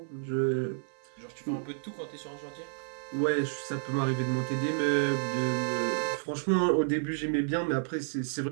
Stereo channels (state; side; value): silent; left; 57 dB below the other